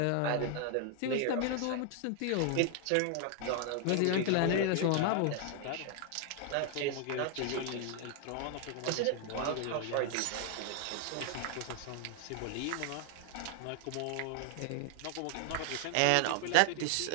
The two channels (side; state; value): both; different; correlation 0.00